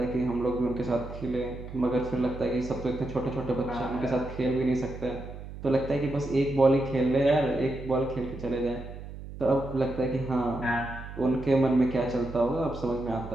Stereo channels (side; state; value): right; noise; hum, 12 dB below the sound